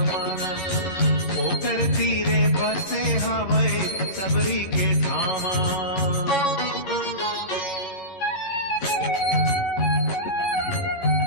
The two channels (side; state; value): right; late; 11 ms